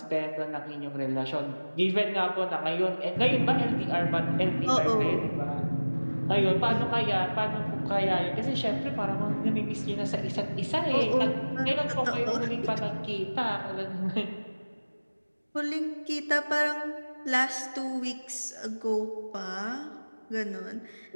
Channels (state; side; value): inverted; both; correlation -1.00